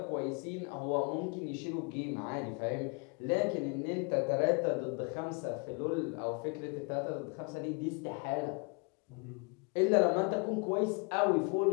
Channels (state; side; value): quieter; right; 34.6 dB